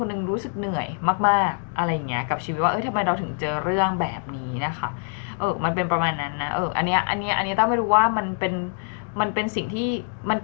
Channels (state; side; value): silent; right; 60 dB below the other